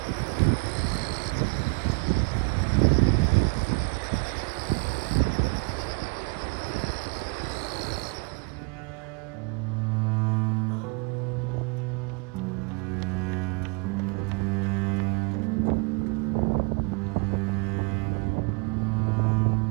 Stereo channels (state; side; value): quieter; left; 30.8 dB